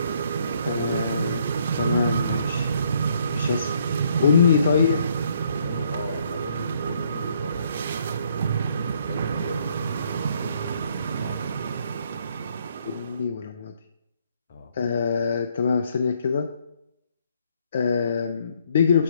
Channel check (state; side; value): inverted; both; correlation -0.68